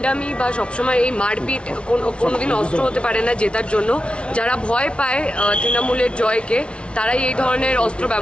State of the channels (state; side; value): late; right; 0.059 ms